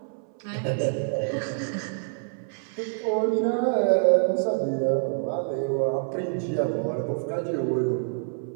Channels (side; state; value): left; silent; 60 dB below the other